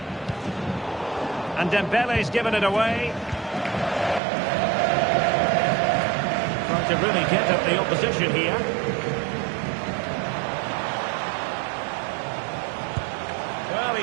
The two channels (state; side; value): drops out; left; at 4.2 s